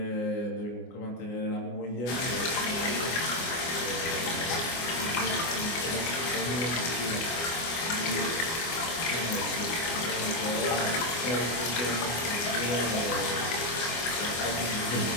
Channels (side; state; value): right; late; 24 ms